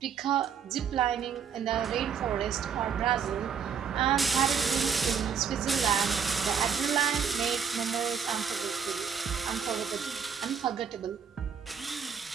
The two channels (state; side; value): quieter; left; 7.0 dB